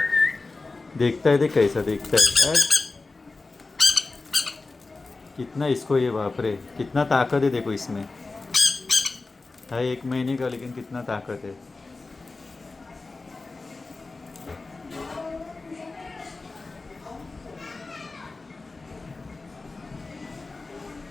देखता है, देख कैसा देखता है। कितना इसको, ये बाप रे, कितना ताकत है देखो इसमें। है 1 महीने का, लेकिन कितना ताकत है।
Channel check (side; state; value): right; quieter; 3.6 dB